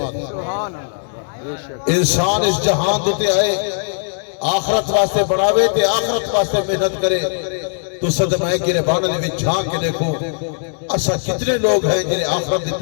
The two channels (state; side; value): silent; right; digital silence